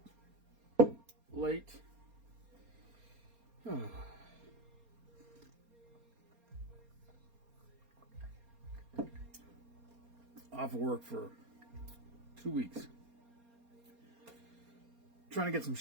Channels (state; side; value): late; left; 4.3 ms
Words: Late. Off of work for 2 weeks. Trying to get some